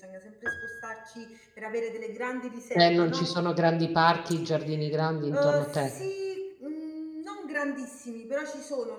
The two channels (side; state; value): both; identical; correlation 1.00